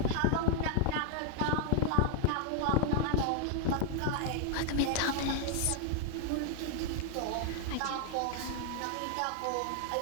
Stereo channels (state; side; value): different; both; correlation 0.00